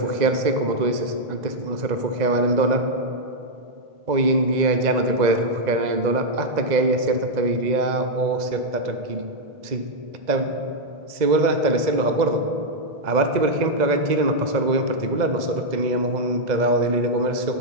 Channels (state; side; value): late; left; 2.0 ms